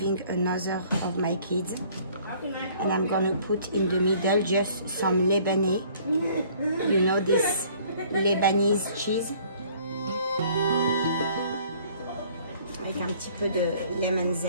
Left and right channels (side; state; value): both; inverted; correlation -0.57